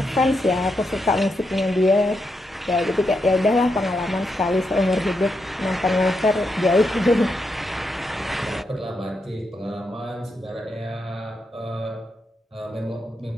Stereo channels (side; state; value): both; normal; correlation 0.83